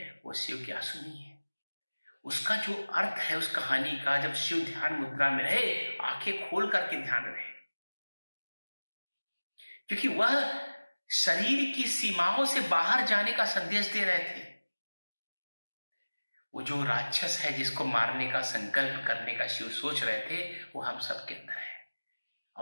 वो शिव की आंसू नहीं है। उसका जो अर्थ है उस कहानी का, जब शिव ध्यान मुद्रा में रहे, आंखें खोल करके ध्यान रहे, क्योंकि वह शरीर की सीमाओं से बाहर जाने का संदेश दे रहे थे। वो जो राक्षस है जिसको मारने का संकल्प करने का शिव सोच रहे थे, वो हम सबके अंदर है।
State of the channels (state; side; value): inverted; both; correlation -1.00